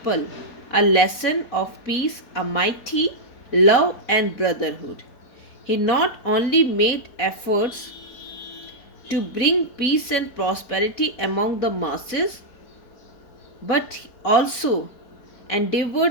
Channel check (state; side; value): late; right; 4.1 ms